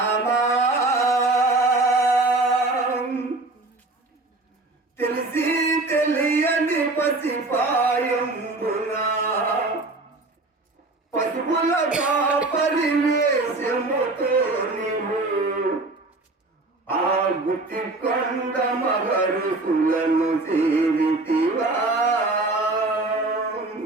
తెలిసి తెలియని పసిపాయంబున పసుపులగా పరివేశముతో నీవు ఆ గుత్తి కొండ మహరుసులను సేవితివా.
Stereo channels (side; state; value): left; quieter; 3.1 dB